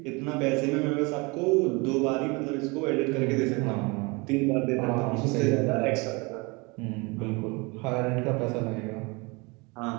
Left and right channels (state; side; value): quieter; left; 27.6 dB